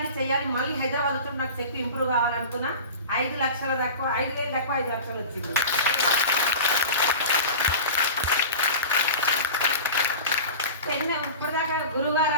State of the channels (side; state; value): both; inverted; correlation -0.33